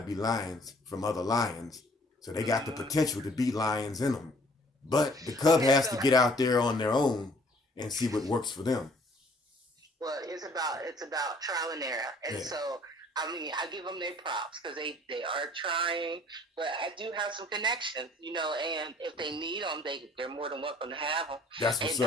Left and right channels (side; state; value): both; normal; correlation 0.57